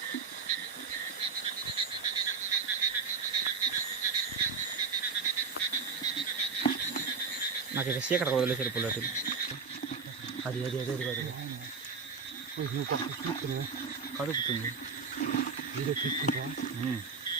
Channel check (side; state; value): left; quieter; 5.3 dB